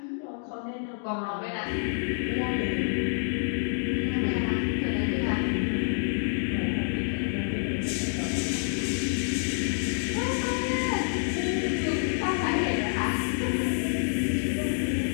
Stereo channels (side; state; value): right; silent; digital silence